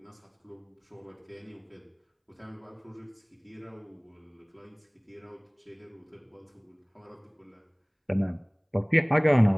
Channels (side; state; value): both; identical; correlation 1.00